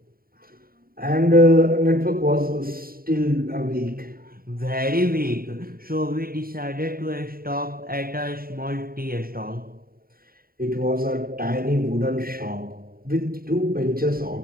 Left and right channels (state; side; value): late; left; 0.43 ms